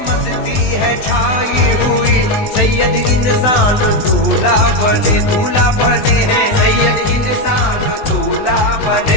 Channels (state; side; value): late; right; 20 ms